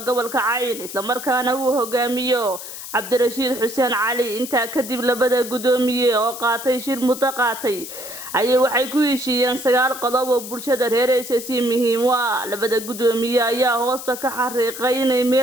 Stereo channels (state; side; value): noise; left; hiss, 11 dB below the sound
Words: gobolka Cayn isla markaana uu hogaamiyo Cabdirashiid Xuseen Cali inta kadib labada gudoomiye oo qaatay shir mutaqaatay ayay waxay ku heshiiyeen 9 qodob oo bulshada reer SSC muhiim u ah labada gudoomiye ayaa hoosta ka xariiqay inay